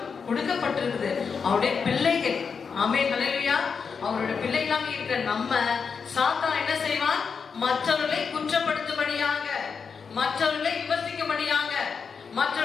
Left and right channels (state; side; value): quieter; right; 5.8 dB